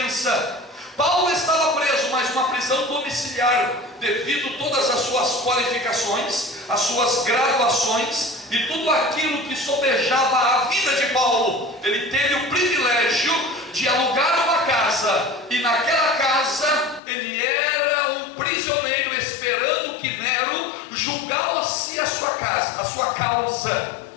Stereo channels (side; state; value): right; drops out; at 17.0 s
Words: Paulo estava preso, mas uma prisão domiciliar, devido a todas as suas qualificações, as suas graduações e tudo aquilo que sobejava a vida de Paulo. Ele teve o privilégio de alugar uma casa, e naquela casa ele era um prisioneiro, esperando que Nero julgasse a sua causa.